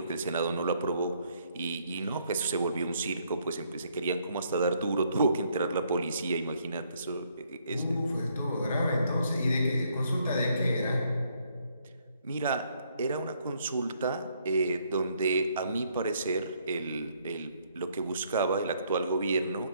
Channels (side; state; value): both; inverted; correlation -0.69